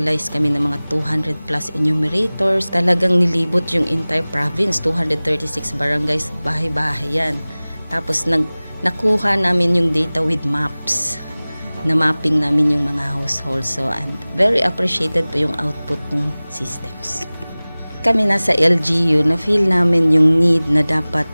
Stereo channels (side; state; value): both; inverted; correlation -0.99